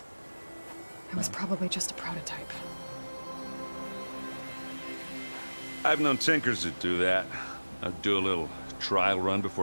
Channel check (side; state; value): both; inverted; correlation -1.00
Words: It was probably just a prototype. I've known tinkers that do that. I'd do a little trial run